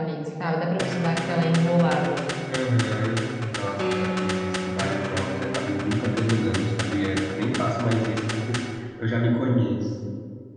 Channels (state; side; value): identical; both; correlation 1.00